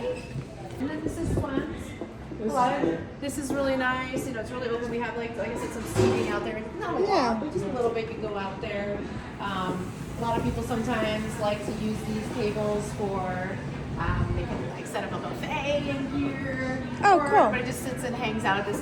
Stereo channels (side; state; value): both; identical; correlation 1.00